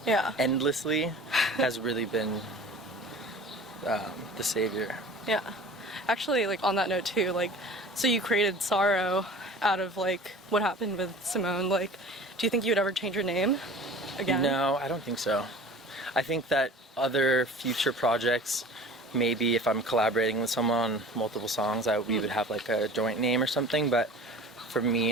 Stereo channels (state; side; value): normal; both; correlation 0.42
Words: endlessly has really been the savior. Yeah. Actually, like on that note too, like so you created SARO out of like what happened with Simone. Like, do you think you would ever change your name again? No, I don't think so. I think that other future projects, maybe if I'm collaborating with someone on multiple songs, we would have like a joint name or something, but for me